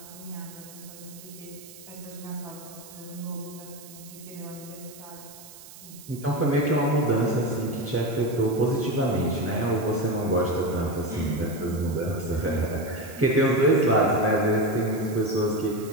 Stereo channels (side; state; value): right; noise; hiss, 18 dB below the sound